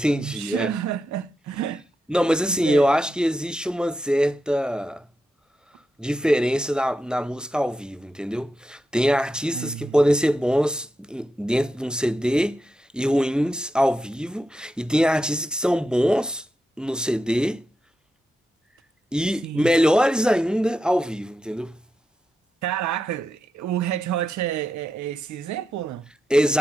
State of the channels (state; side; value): normal; both; correlation 0.87